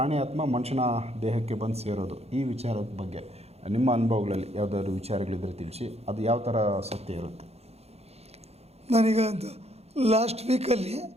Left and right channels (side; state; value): left; late; 0.30 ms